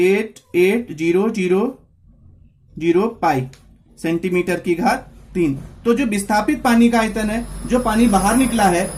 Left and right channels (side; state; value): both; identical; correlation 1.00